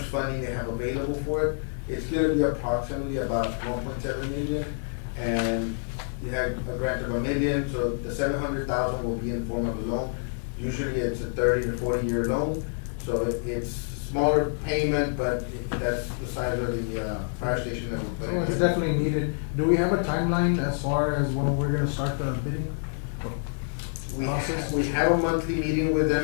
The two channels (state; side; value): silent; right; digital silence